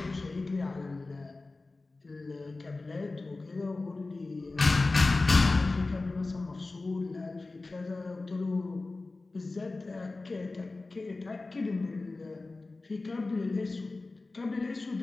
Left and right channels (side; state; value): right; quieter; 3.4 dB